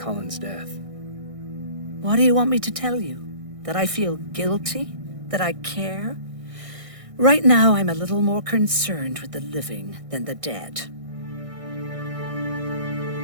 death? What do you want me to tell you? That I feel guilty? That I care? Right now, I'm a little more concerned with the living than the dead.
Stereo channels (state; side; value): late; left; 1.6 ms